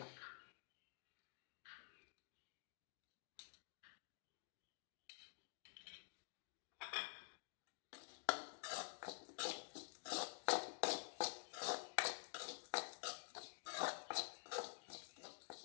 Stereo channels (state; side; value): silent; right; digital silence